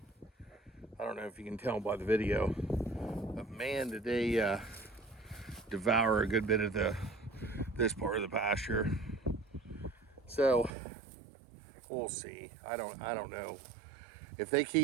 I don't know if you can tell by the video, but man, did they devour a good bit of this part of the pasture. So we'll see. I don't know if they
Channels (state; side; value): drops out; left; at 10.7 s